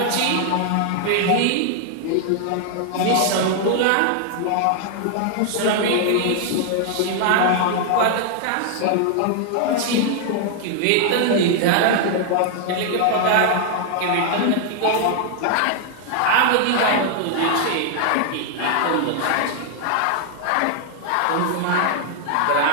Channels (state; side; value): different; both; correlation 0.00